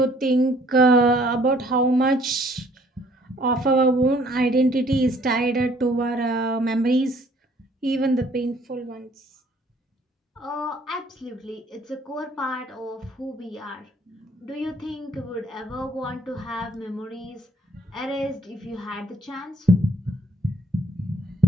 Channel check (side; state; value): both; normal; correlation 0.60